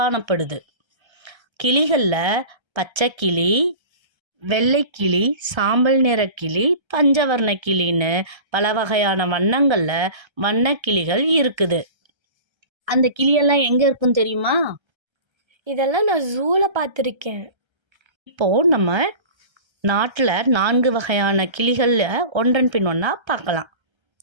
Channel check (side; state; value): left; late; 1.3 ms